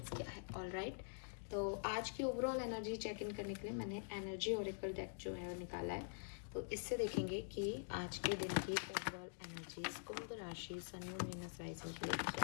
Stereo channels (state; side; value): silent; right; digital silence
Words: क्या है। ऑल राइट, तो आज की ओवरऑल एनर्जी चेक इन करने के लिए मैंने एनर्जी ओरेकल डेक जो है वो निकाला है। तो इससे देखेंगे कि आज के दिन की ओवरऑल एनर्जीज कुंभ राशि, सन, मून, वीनस, राइजिंग के लिए